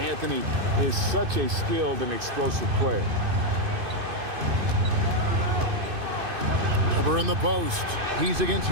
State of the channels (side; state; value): left; late; 2.5 ms